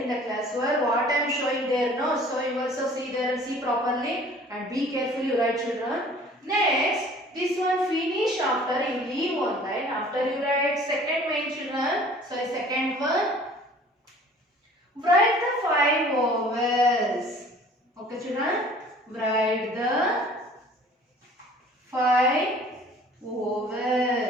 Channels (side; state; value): both; normal; correlation 0.50